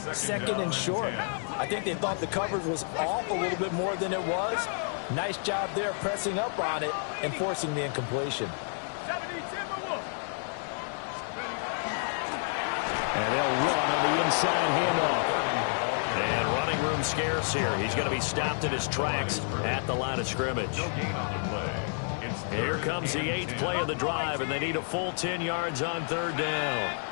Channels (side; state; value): right; silent; 58 dB below the other